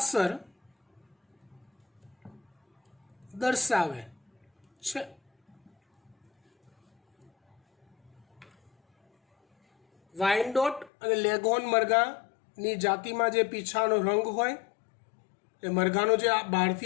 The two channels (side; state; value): right; drops out; at 10.9 s